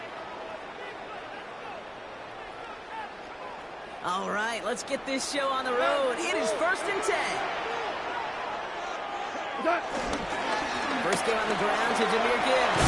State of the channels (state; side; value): identical; both; correlation 1.00